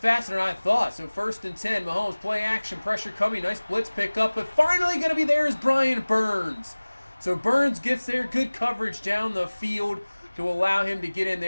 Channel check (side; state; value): both; inverted; correlation -1.00